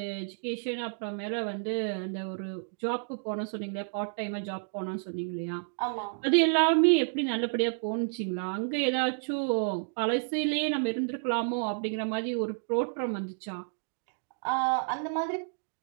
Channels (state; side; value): silent; left; digital silence